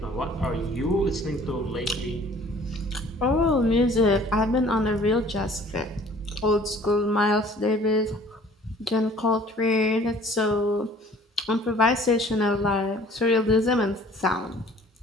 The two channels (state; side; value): normal; both; correlation 0.52